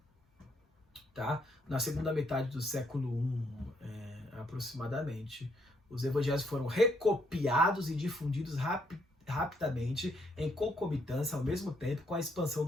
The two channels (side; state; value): both; normal; correlation 0.72